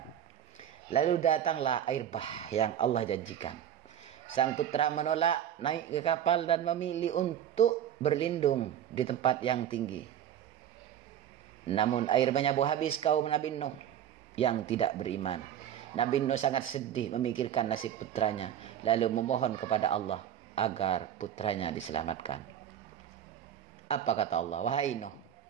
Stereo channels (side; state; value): left; quieter; 10.3 dB